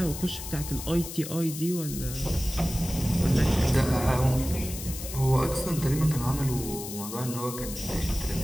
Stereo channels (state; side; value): noise; left; hiss, 9 dB below the sound